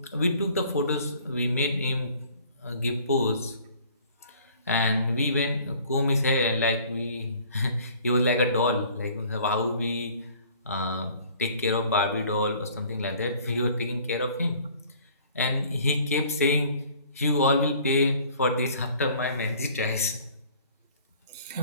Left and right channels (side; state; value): both; inverted; correlation -0.53